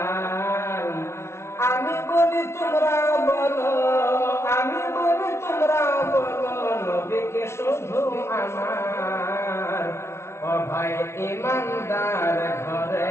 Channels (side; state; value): right; late; 0.13 ms